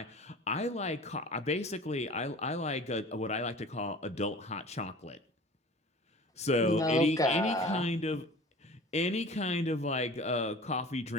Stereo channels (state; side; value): normal; both; correlation 0.42